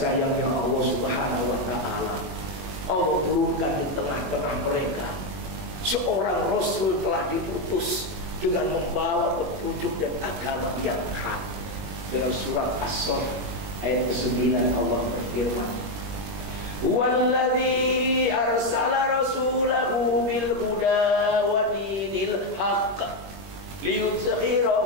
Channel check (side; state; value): left; late; 21 ms